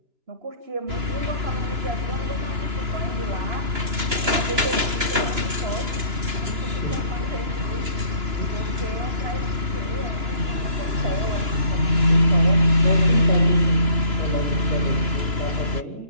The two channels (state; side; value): late; left; 2.9 ms